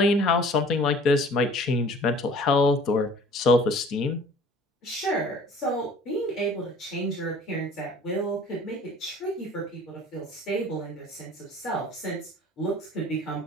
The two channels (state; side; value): normal; both; correlation 0.50